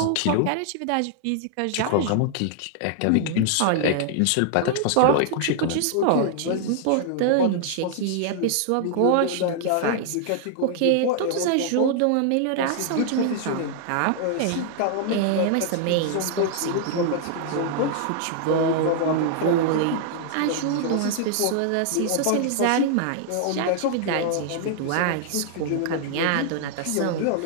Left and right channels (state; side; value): different; both; correlation -0.01